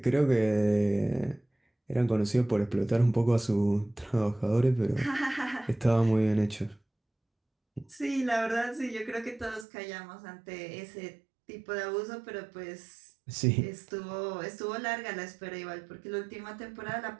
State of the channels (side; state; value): left; drops out; at 9.7 s